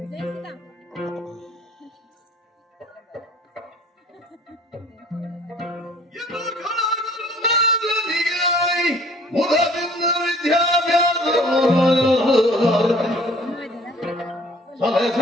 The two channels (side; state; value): both; normal; correlation 0.54